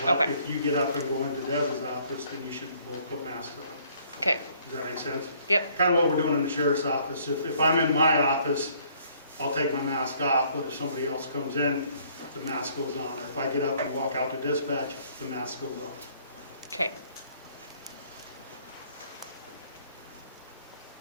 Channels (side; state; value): both; inverted; correlation -0.62